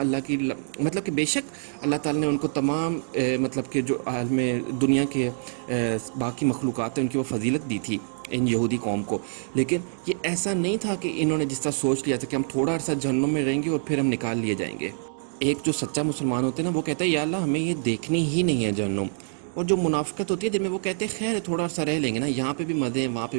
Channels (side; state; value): left; silent; digital silence